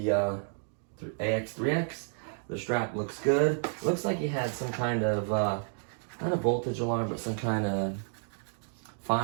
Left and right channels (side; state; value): left; silent; 57 dB below the other